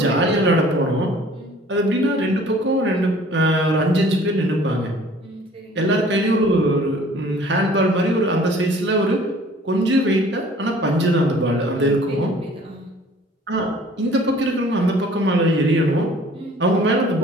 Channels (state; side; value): normal; both; correlation 0.52